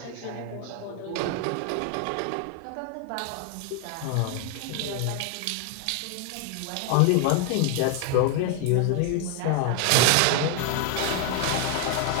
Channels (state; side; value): different; both; correlation 0.01